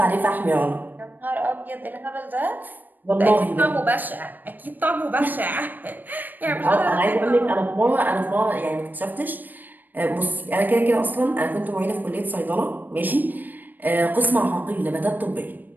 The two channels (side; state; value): left; late; 0.088 ms